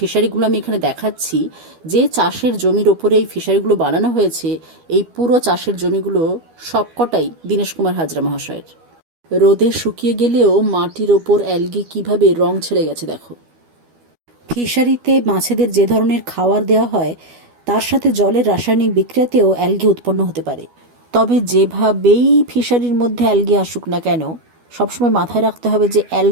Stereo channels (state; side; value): late; left; 12 ms